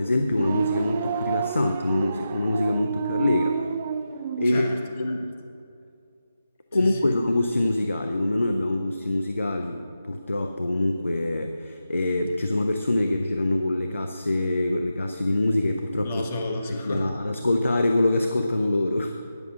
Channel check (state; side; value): inverted; both; correlation -0.90